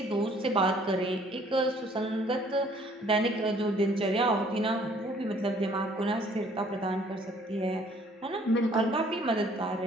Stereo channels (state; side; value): normal; both; correlation 0.59